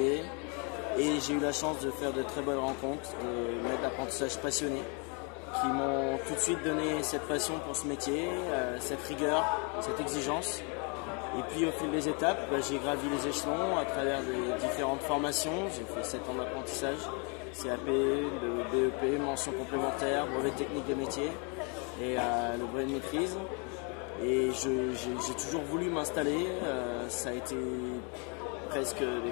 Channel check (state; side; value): quieter; right; 35.2 dB